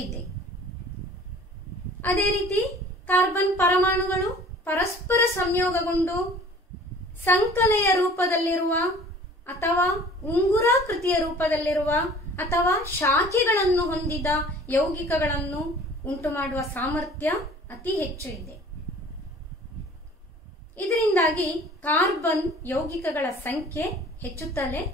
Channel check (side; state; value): both; normal; correlation 0.48